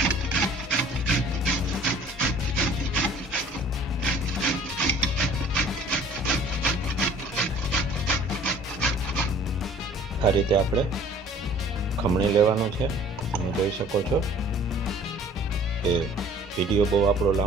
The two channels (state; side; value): normal; both; correlation 0.52